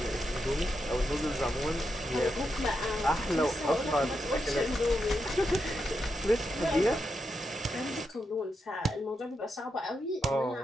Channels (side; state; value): both; normal; correlation 0.85